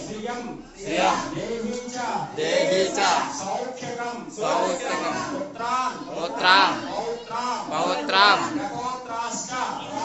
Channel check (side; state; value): both; identical; correlation 1.00